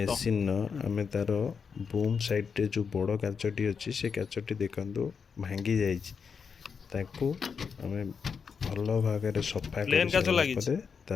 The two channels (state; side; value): quieter; right; 6.0 dB